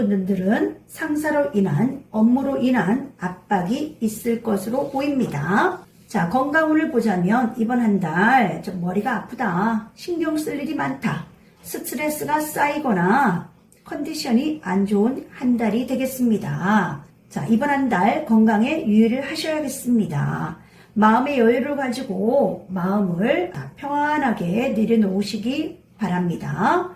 상사로 인한 업무로 인한 압박이 있을 것으로 보입니다. 자, 건강운을 보자면 이번 한 달 좀 머리가 아프다, 신경 쓸 일이 많다, 스트레스가 쌓이거나 컨디션이 안 좋은 한 달이 되겠습니다. 자, 이번 한 달 건강에 유의를 하셔야겠습니다. 마음의 여유를 가지고 마음을 평안하게 내려놓으시기 바랍니다.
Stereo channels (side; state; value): both; identical; correlation 1.00